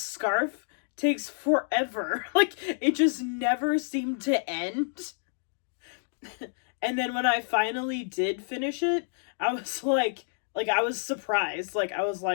takes forever. Like, it just never seemed to end. And then when I finally did finish it, I was like I was surprised. Like I was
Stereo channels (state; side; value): silent; right; digital silence